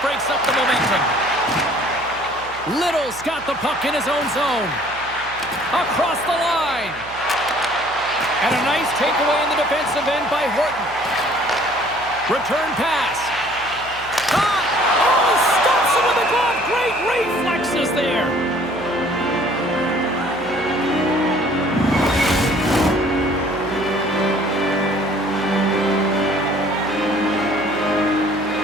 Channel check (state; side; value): noise; right; hum, 20 dB below the sound